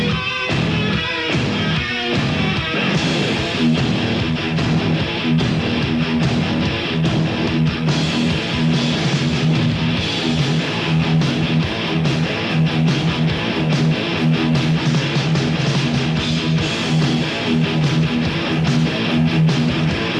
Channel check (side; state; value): both; identical; correlation 1.00